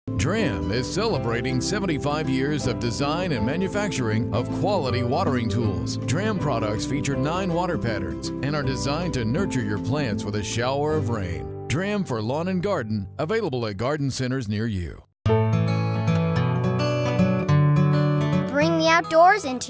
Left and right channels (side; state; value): both; identical; correlation 1.00